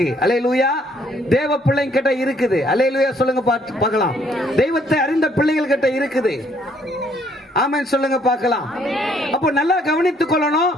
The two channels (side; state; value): both; normal; correlation 0.66